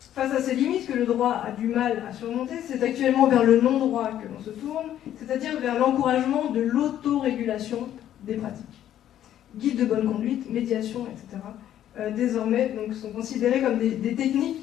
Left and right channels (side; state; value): right; quieter; 11.4 dB